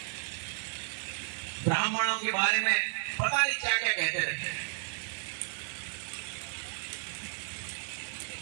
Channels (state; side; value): silent; left; digital silence